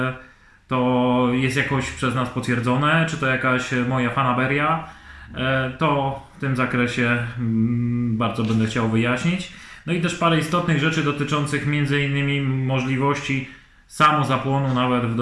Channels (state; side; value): identical; both; correlation 1.00